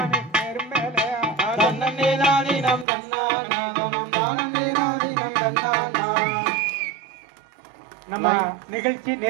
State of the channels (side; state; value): left; drops out; at 2.9 s